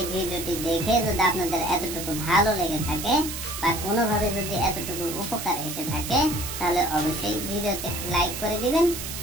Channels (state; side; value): noise; right; hiss, 7 dB below the sound